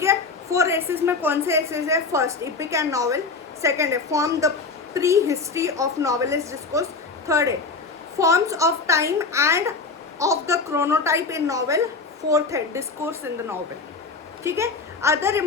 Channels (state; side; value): quieter; right; 4.2 dB